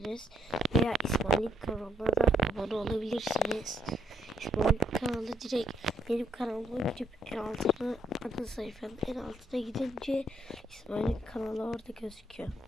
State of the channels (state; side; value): normal; both; correlation 0.71